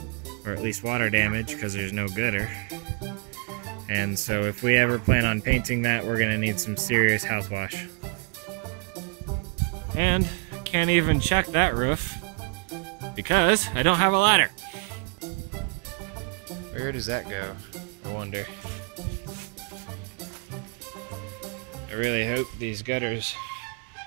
or at least water damage, because there's no gutter. And so if we ever plan on painting that, we're going to need some serious house wash. And I can't even check that roof, because I don't have a ladder. Where does that go? I wonder. I really hope these gutters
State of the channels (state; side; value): quieter; left; 36.2 dB